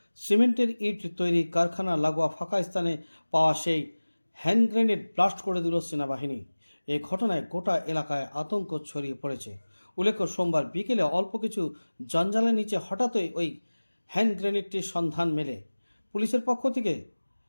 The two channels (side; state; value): both; inverted; correlation -1.00